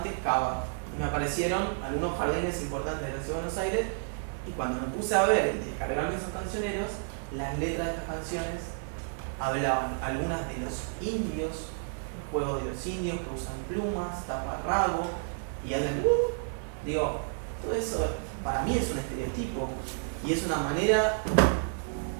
Cava, y me aparecieron algunos jardines importantes de la Ciudad de Buenos Aires, y cuando me puse a ver y descargarme esos cancioneros, las letras de estas canciones hablaban algunas de los indios, el juego de los indios que usan plumas, taparrabo y hablan, digo, todo eso para mí es un estereotipo y es una manera,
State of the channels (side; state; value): left; silent; 57 dB below the other